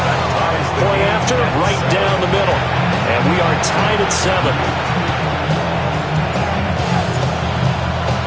Point after, right down the middle. And we are tied at 7.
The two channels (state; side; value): identical; both; correlation 1.00